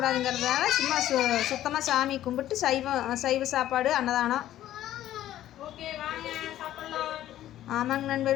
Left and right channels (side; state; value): right; quieter; 13.0 dB